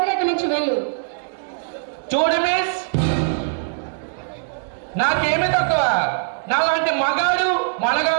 ఇక్కడి నుంచి వెళ్ళు. చూడు మిస్, నాకేమి తక్కువ. నాలాంటి మగాడు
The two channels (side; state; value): left; silent; digital silence